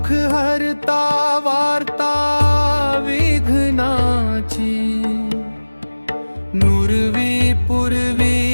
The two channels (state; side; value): inverted; both; correlation -1.00